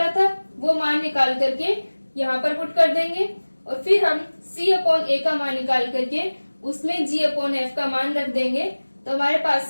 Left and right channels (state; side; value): inverted; both; correlation -1.00